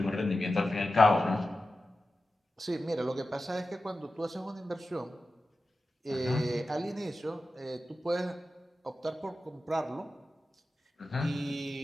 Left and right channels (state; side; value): normal; both; correlation 0.93